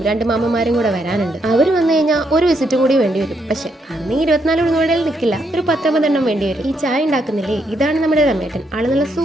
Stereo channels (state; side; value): normal; both; correlation 0.76